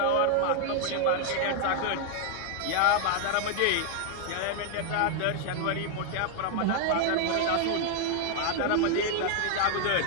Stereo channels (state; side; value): different; both; correlation 0.00